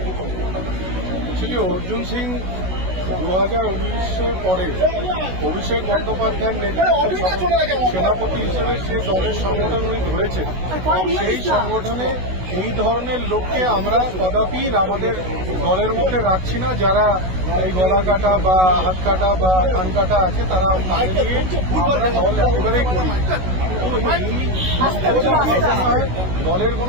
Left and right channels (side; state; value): left; late; 16 ms